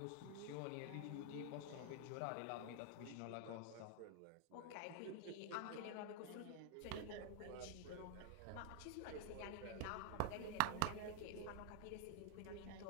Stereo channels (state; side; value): different; both; correlation 0.00